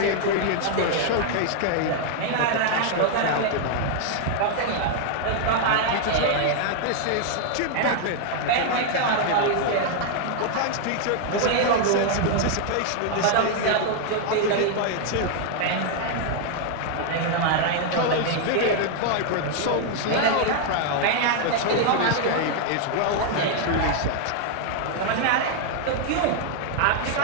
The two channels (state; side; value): different; both; correlation 0.00